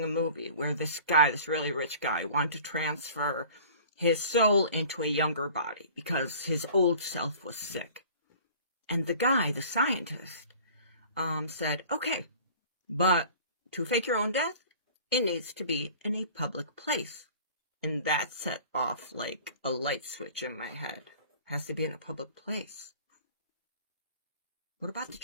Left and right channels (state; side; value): inverted; both; correlation -0.45